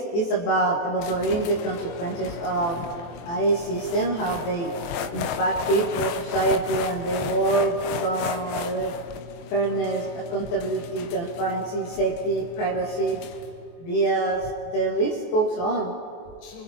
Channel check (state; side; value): late; right; 23 ms